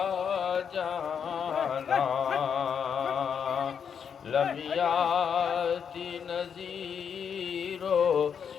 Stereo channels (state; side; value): quieter; right; 7.3 dB